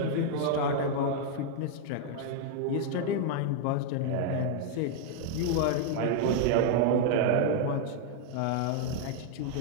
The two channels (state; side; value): different; both; correlation -0.01